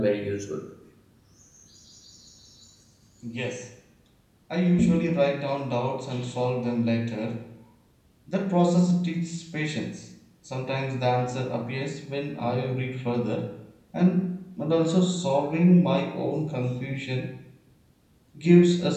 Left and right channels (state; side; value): identical; both; correlation 1.00